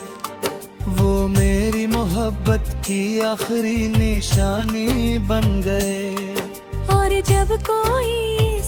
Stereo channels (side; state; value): both; identical; correlation 1.00